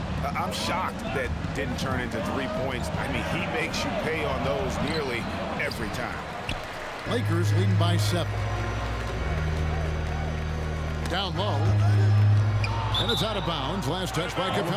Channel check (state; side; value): identical; both; correlation 1.00